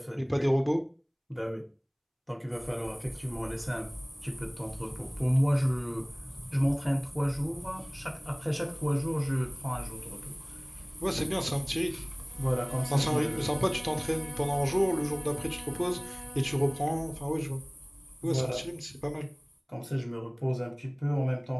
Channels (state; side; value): identical; both; correlation 1.00